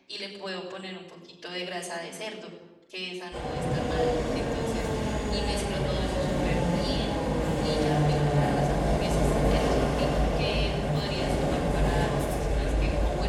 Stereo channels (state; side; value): identical; both; correlation 1.00